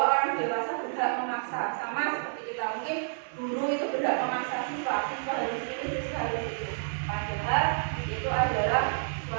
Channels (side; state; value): left; silent; 58 dB below the other